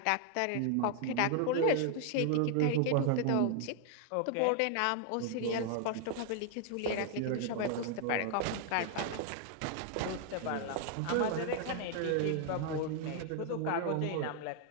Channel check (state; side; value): different; both; correlation 0.00